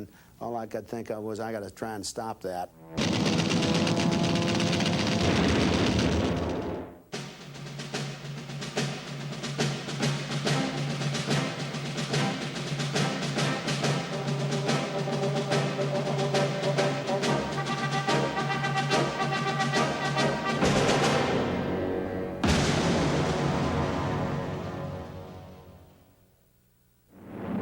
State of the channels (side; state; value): both; identical; correlation 1.00